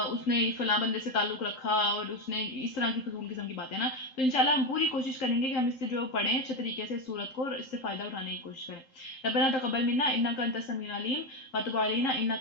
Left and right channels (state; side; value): late; right; 3.8 ms